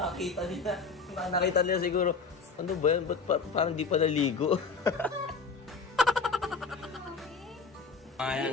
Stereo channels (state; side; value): quieter; right; 4.8 dB